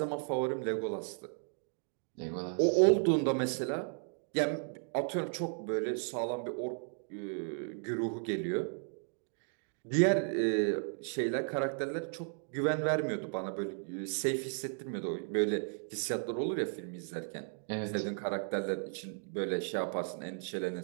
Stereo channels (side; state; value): left; silent; 54 dB below the other